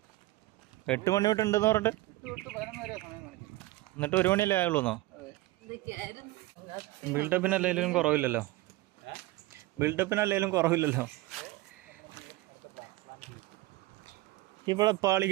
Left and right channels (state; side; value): quieter; left; 18.3 dB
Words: 8 മണി തൊട്ട് ഉണ്ടെന്ന് പറഞ്ഞിട്ട് എന്നിട്ട് 1 മണിയല്ലേ ആയുള്ളൂന്നോ? ബിൽഡപ്പിനല്ലേലും കുറവില്ലല്ലോ, ഇവിടെ പാളി